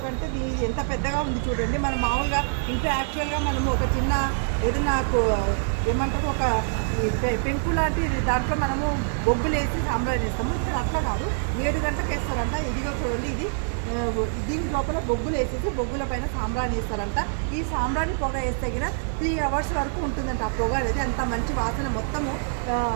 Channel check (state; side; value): silent; left; digital silence